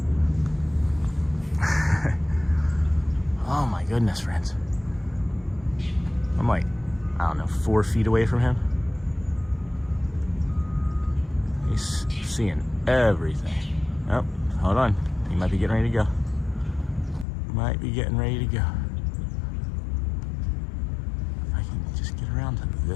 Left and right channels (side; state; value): right; drops out; at 17.2 s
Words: Oh my goodness, friends. I'm like, I don't know, 4 feet away from him. seeing everything. Oh, hold on. He might be getting ready to go. Might be getting ready to go. I can just get around to